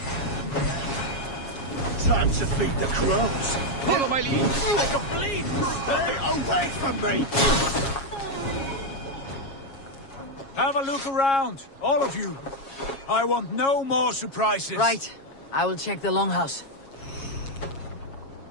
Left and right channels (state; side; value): late; right; 7.3 ms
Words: Time to feed the crows. Follow my lead. I can bleed. Stay away from me! Have a look around, all of you. I want no more surprises. Right. I will check the longhouse.